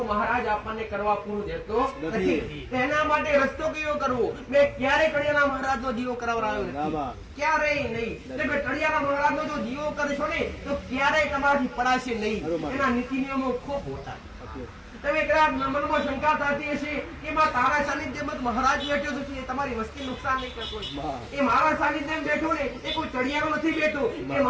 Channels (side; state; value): both; identical; correlation 1.00